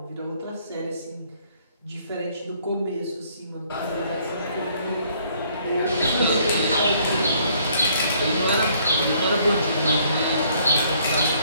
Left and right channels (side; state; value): both; inverted; correlation -0.63